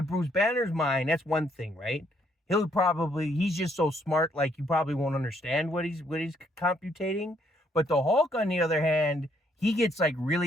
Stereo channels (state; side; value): normal; both; correlation 0.70